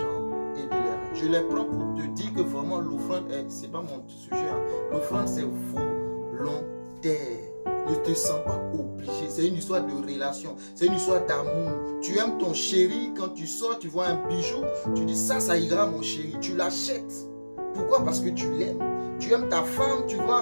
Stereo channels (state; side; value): inverted; both; correlation -1.00